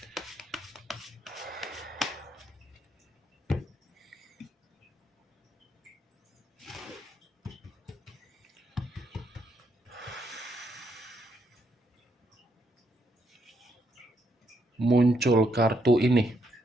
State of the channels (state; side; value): normal; both; correlation 0.76